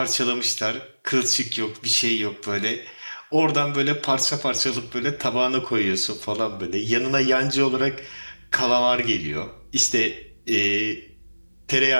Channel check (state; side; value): inverted; both; correlation -1.00